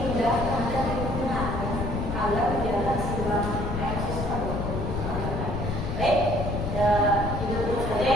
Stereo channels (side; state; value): left; noise; rumble, 3 dB below the sound